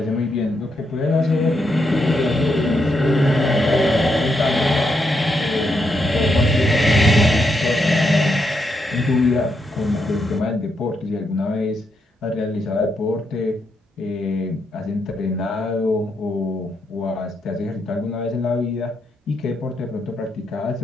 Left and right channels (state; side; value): normal; both; correlation 0.80